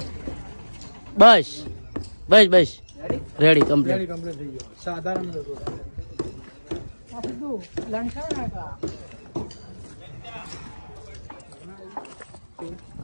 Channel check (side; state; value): both; inverted; correlation -1.00